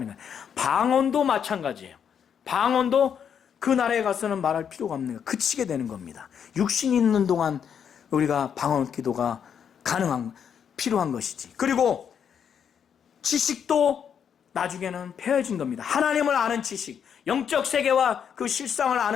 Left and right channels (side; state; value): right; quieter; 7.9 dB